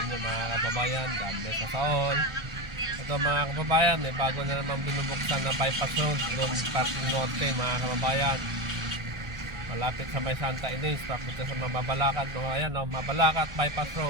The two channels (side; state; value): left; late; 1.4 ms